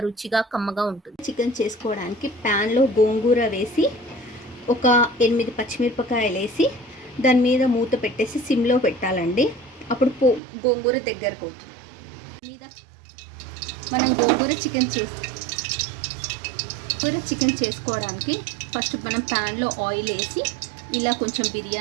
రుచిగా కమ్మగా ఉంటుంది. చికెన్ చేసుకోవడానికి ప్యాన్లో గోంగూర వేసి ఒక 8 పచ్చిమిరపకాయలు వేసి దాని మీద మూత పెట్టేసి సిమ్లో పెట్టాలండి. అప్పుడు గోంగూర దగ్గరకు అవుతుంది. మీద మనం గోంగూర చికెన్ చేసుకోవడానికి ఫస్ట్ మనం ప్యాన్లో ఆయిల్ వేసి ఇలా కొంచెం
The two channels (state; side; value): drops out; left; at 10.4 s